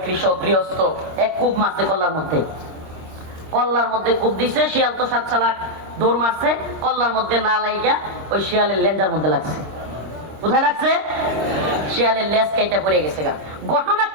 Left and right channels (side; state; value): left; late; 25 ms